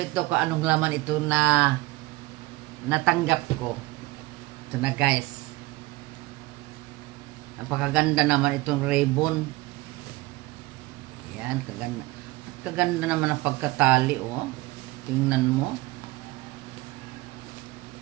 ito kung anong laman ito na natanggap ko. Ito na guys. Napakaganda naman itong ribbon. Yan, kaganda. Kaganda naman ang pagkatali, oh. Tingnan mo.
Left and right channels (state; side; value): quieter; left; 20.7 dB